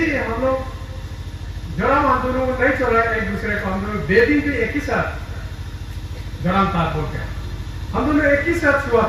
हम लोग जराम हम दोनों नहीं चला एक दूसरे को, हम दोनों बेबी भी एक ही साथ जराम था बोल के हम दोनों एक ही साथ छुआ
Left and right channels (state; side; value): identical; both; correlation 1.00